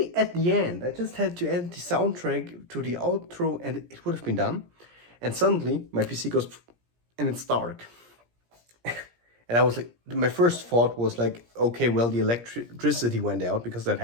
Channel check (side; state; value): left; late; 17 ms